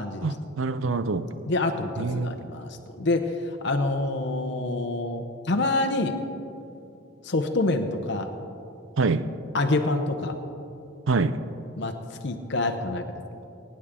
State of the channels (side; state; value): both; normal; correlation 0.27